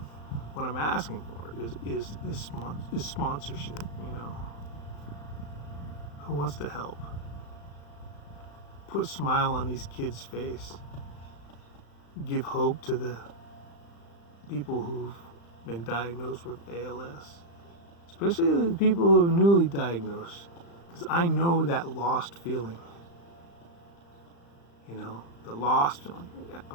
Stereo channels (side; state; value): right; late; 35 ms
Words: for is sponsorship. Who wants to help? Put a smile on these kids' face. Give hope to the people who've been diagnosed with ALS, especially the people who are newly diagnosed, because I know that lost feeling. The lost feeling.